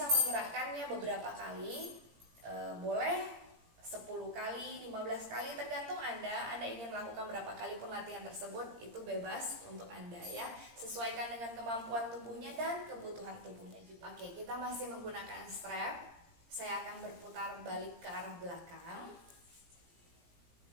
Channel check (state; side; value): late; left; 17 ms